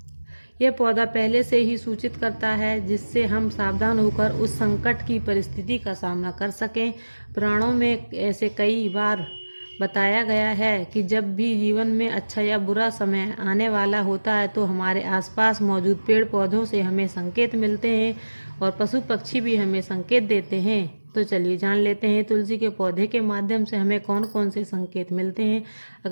यह पौधा पहले से ही सूचित करता है जिससे हम सावधान होकर उस संकट की परिस्थिति का सामना कर सकें। पुराणों में ऐसे कई बार बताया गया है कि जब भी जीवन में अच्छा या बुरा समय आने वाला होता है तो हमारे आसपास मौजूद पेड़ पौधों से हमें संकेत मिलते हैं और पशु पक्षी भी हमें संकेत देते हैं। तो चलिए जान लेते हैं तुलसी के पौधे के माध्यम से हमें कौन कौन से संकेत मिलते हैं।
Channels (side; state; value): both; inverted; correlation -1.00